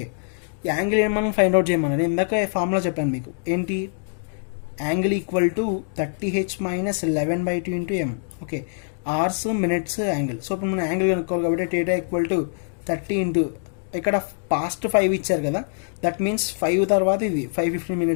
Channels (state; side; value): silent; right; digital silence